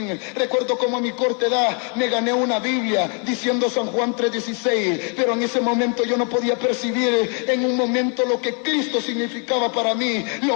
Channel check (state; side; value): quieter; right; 39.8 dB